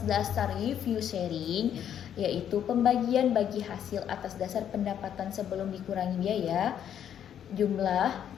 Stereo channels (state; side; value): quieter; right; 9.5 dB